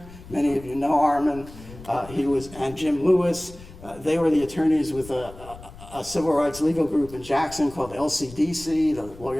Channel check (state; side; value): noise; left; rumble, 18 dB below the sound